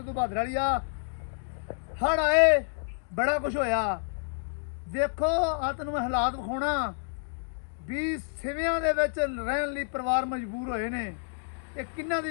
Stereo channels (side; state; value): right; silent; digital silence